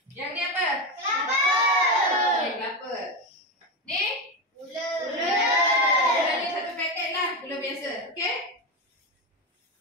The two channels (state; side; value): normal; both; correlation 0.15